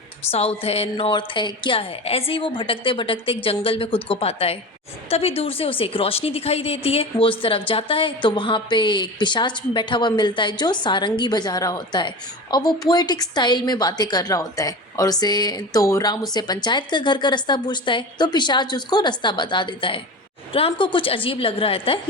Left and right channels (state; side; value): normal; both; correlation 0.30